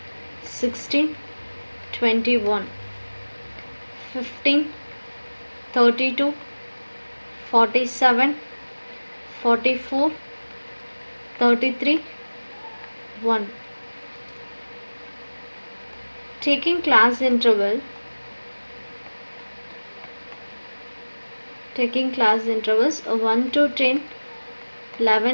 16, 21, 15, 32, 47, 44, 33, 1. Taking class intervals 1 to 10,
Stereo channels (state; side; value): inverted; both; correlation -1.00